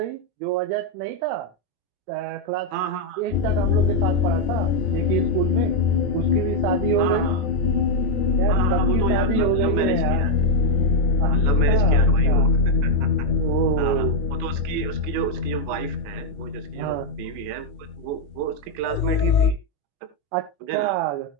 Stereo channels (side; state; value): left; late; 21 ms